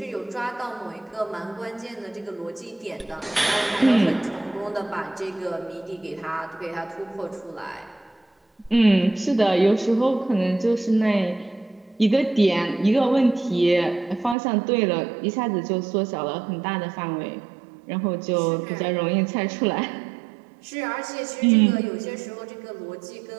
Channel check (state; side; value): drops out; left; at 14.4 s